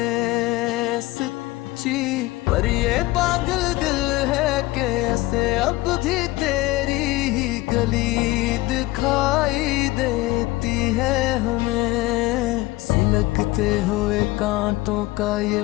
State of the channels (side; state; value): right; quieter; 19.3 dB